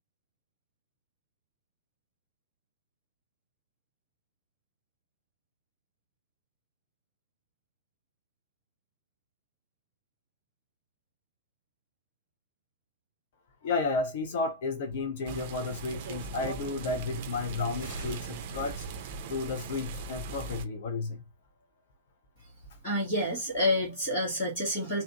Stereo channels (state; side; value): inverted; both; correlation -0.33